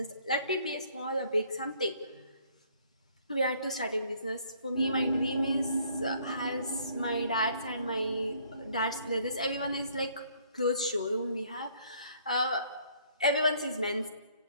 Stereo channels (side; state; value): both; inverted; correlation -0.62